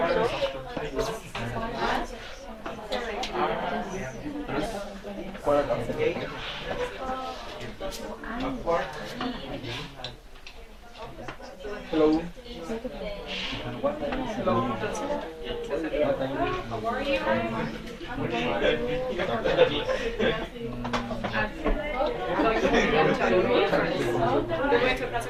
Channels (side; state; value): both; identical; correlation 1.00